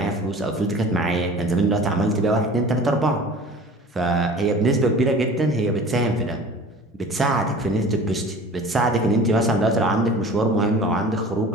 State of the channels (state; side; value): normal; both; correlation 0.42